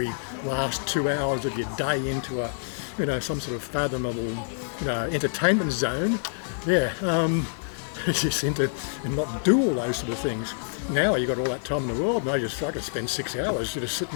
last 2 hours of your day into some sort of fathomable, entertainment zone. Yeah, just into and not do all those sort of things. Now you got all that time in the world, and I could spend 6 hours just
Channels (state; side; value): silent; right; digital silence